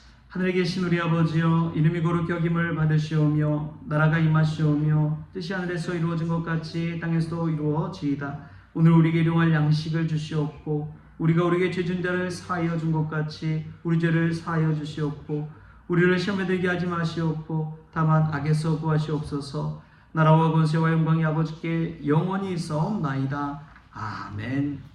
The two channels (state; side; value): identical; both; correlation 1.00